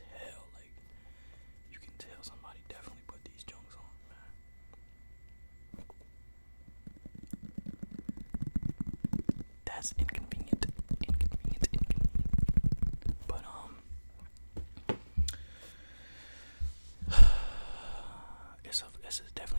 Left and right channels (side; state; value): both; inverted; correlation -1.00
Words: like you can tell somebody definitely put these Jones on, man. That's inconvenient. But it's